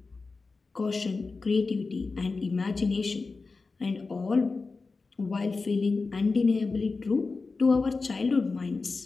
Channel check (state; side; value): quieter; right; 4.0 dB